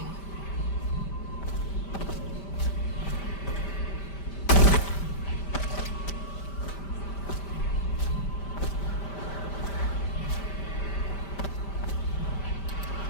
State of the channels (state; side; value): late; right; 5.1 ms